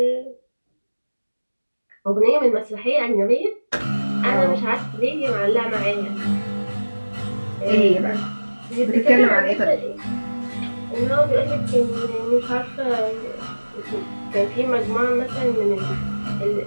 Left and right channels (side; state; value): both; inverted; correlation -1.00